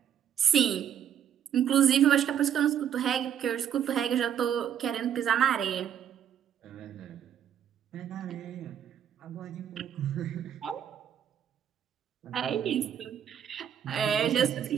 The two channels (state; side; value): quieter; left; 9.3 dB